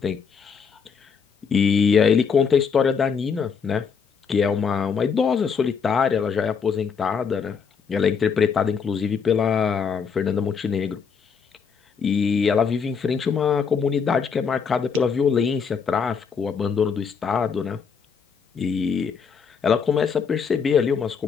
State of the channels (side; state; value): right; quieter; 6.2 dB